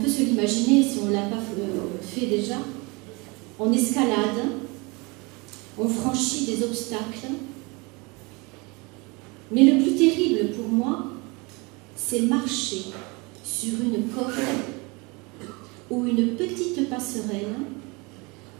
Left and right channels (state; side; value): quieter; left; 27.3 dB